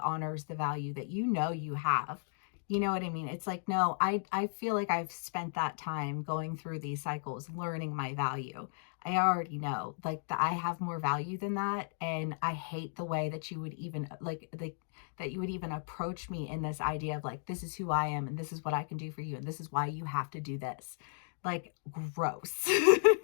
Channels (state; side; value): silent; right; digital silence